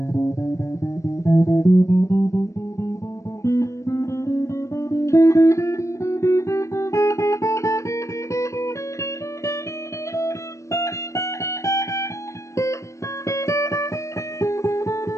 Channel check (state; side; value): late; right; 0.15 ms